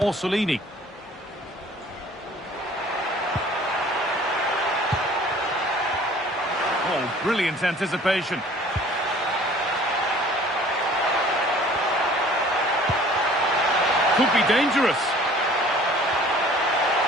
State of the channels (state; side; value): normal; both; correlation 0.51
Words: Orsolini. Oh, brilliant anticipation. Could be dangerous.